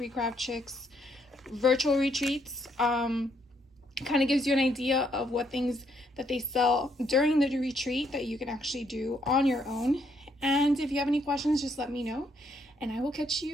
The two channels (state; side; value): normal; both; correlation 0.72